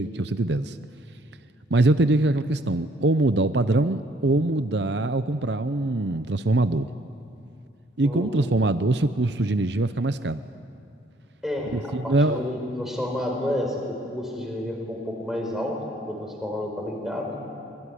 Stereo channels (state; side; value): normal; both; correlation 0.64